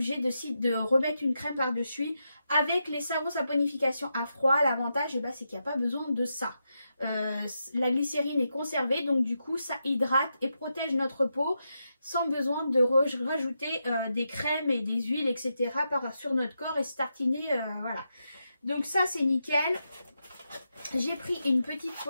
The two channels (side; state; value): both; inverted; correlation -0.86